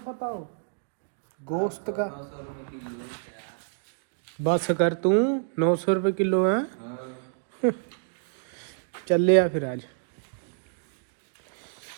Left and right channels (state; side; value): silent; left; digital silence